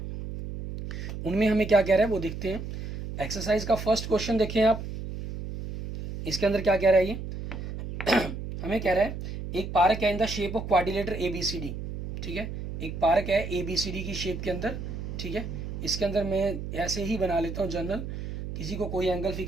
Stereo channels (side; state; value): right; noise; hum, 7 dB below the sound